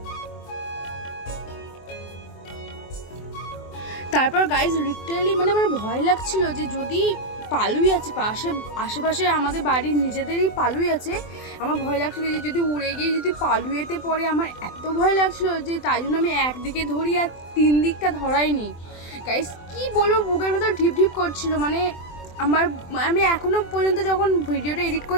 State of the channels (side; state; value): right; late; 24 ms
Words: তারপর গাইজ লিটারালি মানে আমার ভয় লাগছিল যে যদি পালুই আছে আশেপাশে আমাদের বাড়ির নিজেদেরই পালুই আছে, আমার ভয় লাগছিল যে যদি উড়ে গিয়ে যদি পালুয়েতে পড়ে, আমার এত ভয় লাগছিল যে তাই জন্য আমি একদিকে ধরি আর 3 দিকটা ধরাইনি। গাইজ কি বলবো, বুকের ভেতর ঢিপ ঢিপ করছিল, মানে আমি এখনও পর্যন্ত যখন ভিডিওটা এডিট